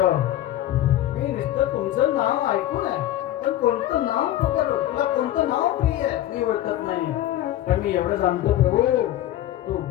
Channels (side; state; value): right; quieter; 13.3 dB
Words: मी नुसतं तुमचं नाव ऐकून आहे पण कोणतं नाव पकडू तुला कोणतं नाव प्रिय आहे मी ओळखत नाही पण मी एवढं जाणतो प्रभू तू